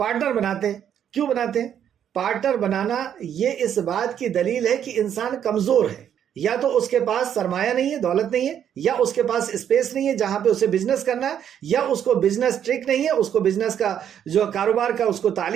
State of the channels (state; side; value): quieter; left; 9.3 dB